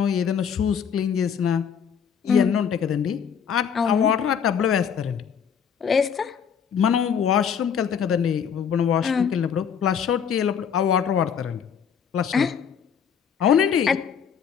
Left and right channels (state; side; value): quieter; right; 7.5 dB